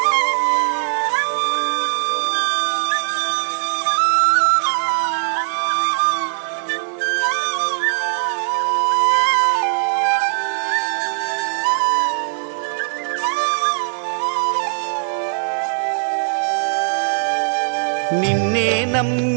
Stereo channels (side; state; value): left; silent; digital silence